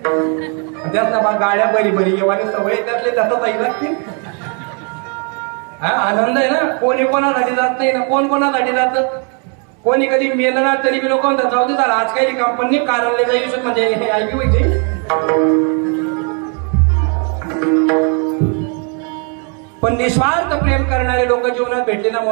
त्यात ना गाड्या बरी बरी येवानी सवय त्यातले त्याचा ताई लागतील. आनंद आहे ना. कोणी कोणासाठी जात नाही ना, कोण कोणासाठी जात. कोणी कधी मेलं ना तरी बी लोक म्हणतात जाऊ दे झाला आज काही कंपनी कारणले जाईल म्हणजे हे ऐकू पाहिजे. पण निस्वार्थ प्रेम करणारे लोक जीवनात भेटले ना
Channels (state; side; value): quieter; left; 38.3 dB